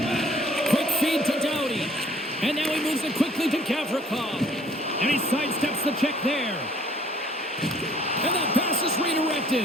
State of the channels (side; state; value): both; normal; correlation 0.57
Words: Quick feed to Doughty. And now he moves it quickly to Gavrikov. And he sidesteps the check there. And that pass is